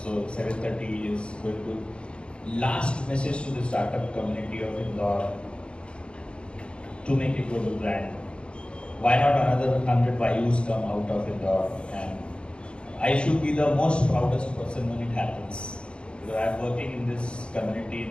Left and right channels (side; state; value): right; late; 0.056 ms